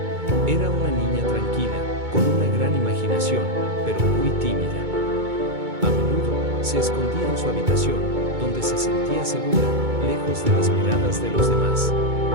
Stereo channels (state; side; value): late; left; 2.2 ms